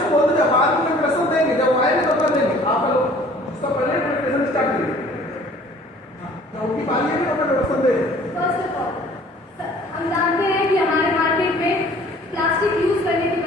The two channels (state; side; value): normal; both; correlation 0.52